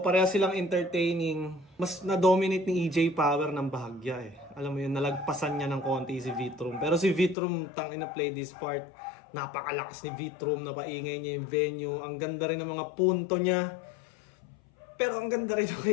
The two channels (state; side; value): drops out; right; at 7.4 s